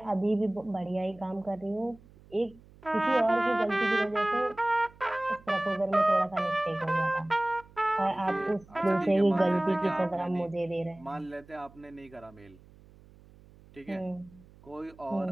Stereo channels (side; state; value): right; noise; hum, 24 dB below the sound